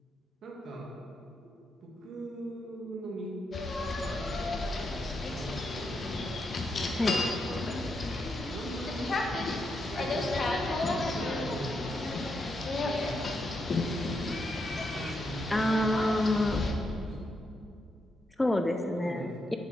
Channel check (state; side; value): normal; both; correlation 0.82